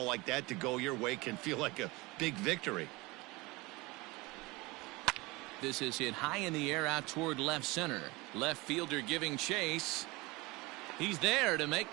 like that to go your way can feel like a big victory. This is hit high in the air out toward left center. Left fielder giving chase. He's there to make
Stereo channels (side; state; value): left; quieter; 23.2 dB